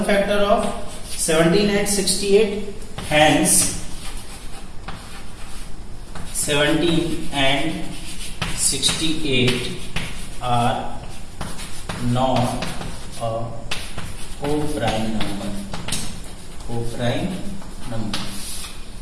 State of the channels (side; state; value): both; identical; correlation 1.00